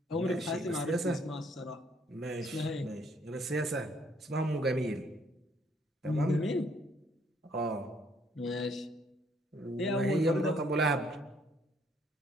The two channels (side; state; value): both; normal; correlation 0.65